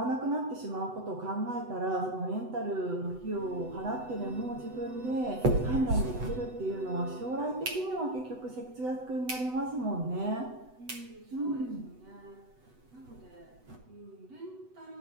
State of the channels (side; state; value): left; late; 8.0 ms